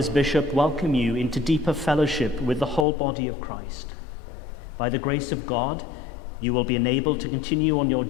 Bishop, welcome you into deeper fellowship with the whole body of Christ. By the grace of God, you will be enabled to continue on your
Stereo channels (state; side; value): drops out; right; at 2.9 s